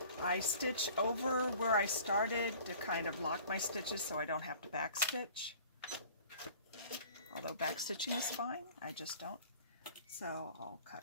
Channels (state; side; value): inverted; both; correlation -0.48